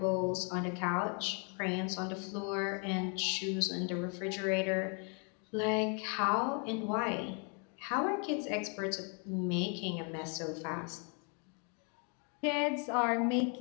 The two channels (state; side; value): quieter; right; 38.7 dB